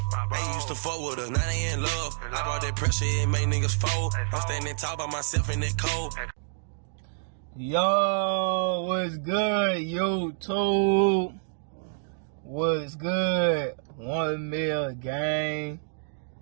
They used to fuck with us, now they in love. I brought that pressure, it made niggas fold. I'm standing tall by myself in that cold. Yo, what's good, YouTube? What's good? 1 mil gang.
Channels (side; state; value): left; silent; digital silence